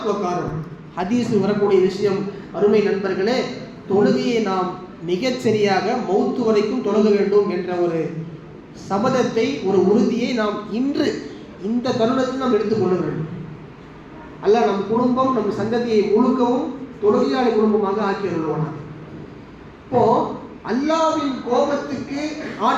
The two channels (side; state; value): both; identical; correlation 1.00